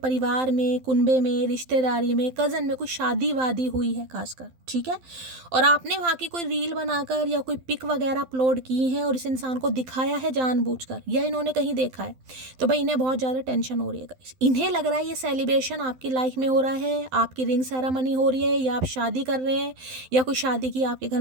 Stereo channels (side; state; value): left; late; 12 ms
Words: में, कुनबे में, रिश्तेदारी में, कज़न में कोई शादी वादी हुई है खासकर, ठीक है, और आपने वहाँ की कोई रील बनाकर या कोई पिक वगैरह अपलोड की है और इस इंसान को दिखाया है जानबूझकर, या इन्होंने कहीं देखा है, तो भाई इन्हें बहुत ज़्यादा टेंशन हो रही है गाइस। इन्हें लग रहा है ये सेलिब्रेशन आपकी लाइफ में हो रहा है, आपकी रिंग सेरेमनी हो रही है, या आप शादी कर रहे हैं, या कोई शादी की आपके